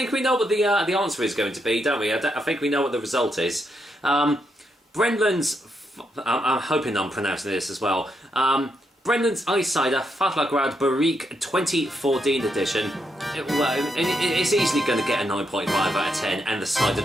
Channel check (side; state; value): both; normal; correlation 0.80